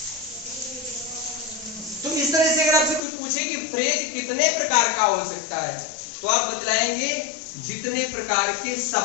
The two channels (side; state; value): right; drops out; at 3.0 s